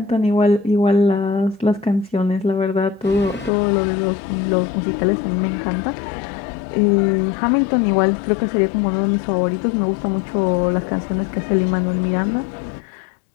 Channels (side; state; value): right; drops out; at 3.5 s